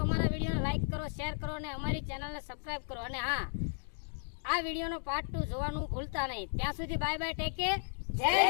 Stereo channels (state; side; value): silent; right; digital silence